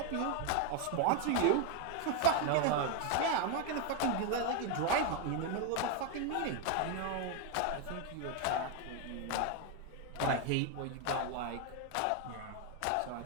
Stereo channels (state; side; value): different; both; correlation 0.01